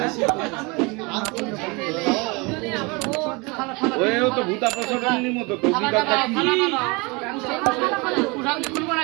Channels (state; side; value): quieter; left; 27.6 dB